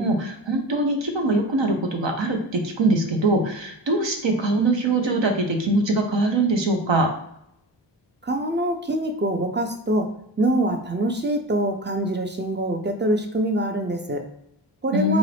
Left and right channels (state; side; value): normal; both; correlation 0.31